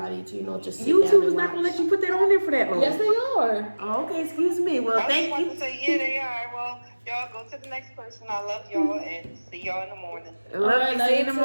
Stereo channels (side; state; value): both; inverted; correlation -1.00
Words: to, you know, just sit down YouTube and is not watch. gonna let you put that on there for that long. Yes, they are. Oh, okay, excuse me. Well, thank you. To say, yeah, they are. Well, y'all go to the next person. I love y'all and see y'all in the morning. Love you. See you in the